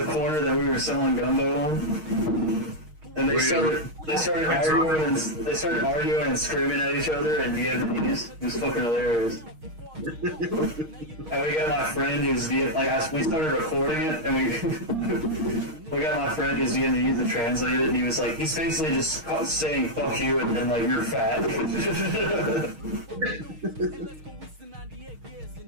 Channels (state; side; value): late; left; 6.4 ms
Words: corner that we were selling gumbo on. And they started arguing and screaming at each other in Vietnamese. It was fucking hilarious. And we got my friend who's we started recording it, and we got my friend who's Vietnamese to translate it, and he was like, he's basically just saying "fuck you" and like you're fat.